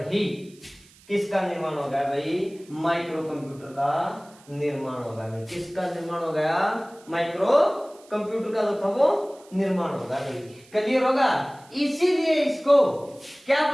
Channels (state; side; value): noise; right; hiss, 26 dB below the sound